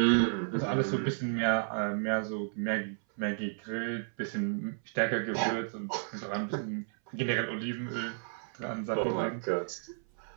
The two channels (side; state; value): left; silent; 56 dB below the other